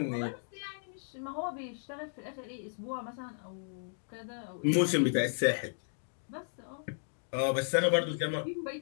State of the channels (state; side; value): silent; right; digital silence